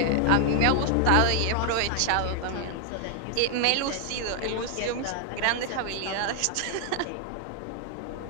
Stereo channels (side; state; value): both; different; correlation 0.00